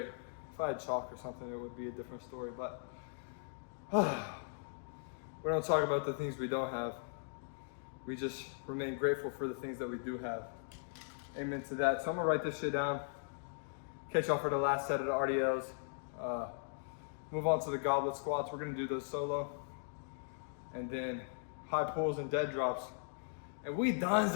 If I had chalk or something, it would be a different story, but we don't talk about the things we don't have. We just remain grateful for the things that we do have. Amen to that. So I'm gonna write this shit down. Catch y'all for the last set of the RDLs. Move on to the goblet squats. We're gonna do those solo. And then high pulls and dead drops. And we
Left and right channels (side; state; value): right; silent; digital silence